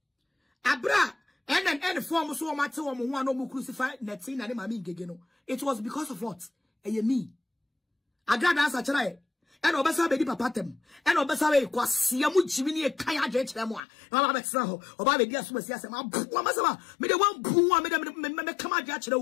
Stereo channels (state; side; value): drops out; right; at 13.8 s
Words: Abra and form so much one no crucify Natina and Maame Ngege no. It was because of what? Me. Agradaa answer try. And obesa be di papa tem. And obesa we kwase amu jimini e kan adwe kire mo a. Na ba betra ho. Oba be di asoma si asem. Abu masama. Me de wan bu a me kam adwe kire